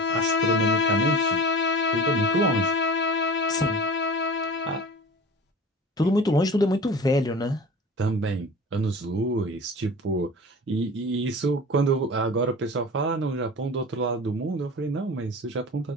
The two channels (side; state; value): both; normal; correlation 0.37